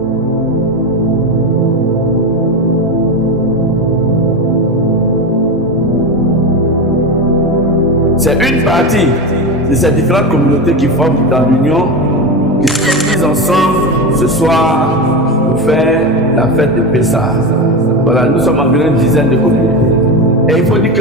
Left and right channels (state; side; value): normal; both; correlation 0.19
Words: C'est une partie de ces différentes communautés qui forment dans l'Union, qui se réunissent ensemble ce soir pour faire la fête de Pessah. Voilà, nous sommes environ une dizaine de communautés. Et il faut dire